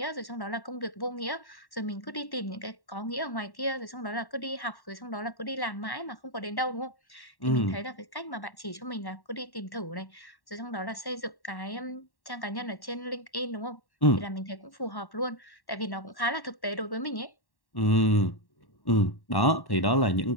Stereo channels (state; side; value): late; right; 1.1 ms